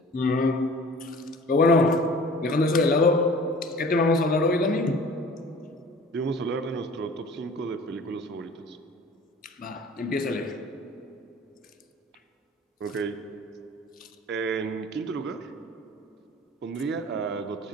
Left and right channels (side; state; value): both; normal; correlation 0.45